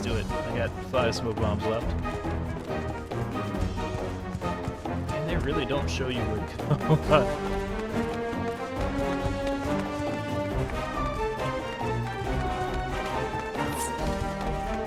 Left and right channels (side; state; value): both; identical; correlation 1.00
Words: it. I got 5 smoke bombs left. And they really don't show you where to go.